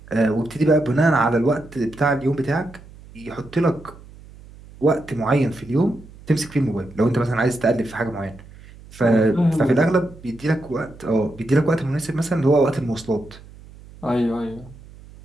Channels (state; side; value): noise; right; hum, 20 dB below the sound